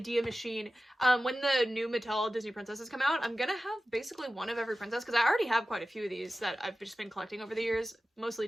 machine. When the new Mattel Disney princesses come out, I'm gonna have basically one of every princess, because I already have quite a few of these that I've just been collecting over the years,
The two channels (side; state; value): both; normal; correlation 0.95